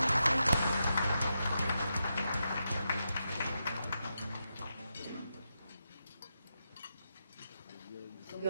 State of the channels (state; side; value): inverted; both; correlation -0.86